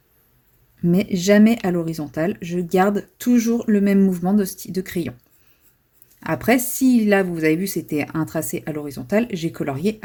Mais jamais à l'horizontale. Je garde toujours le même mouvement de crayon. Après, si là, vous avez vu, c'était un tracé à l'horizontale, j'ai colorié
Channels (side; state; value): both; identical; correlation 1.00